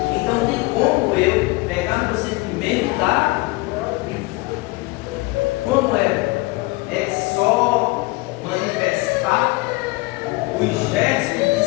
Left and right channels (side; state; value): right; quieter; 23.7 dB